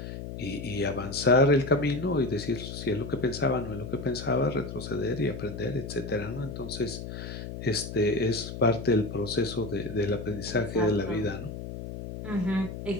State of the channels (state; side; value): noise; left; hum, 8 dB below the sound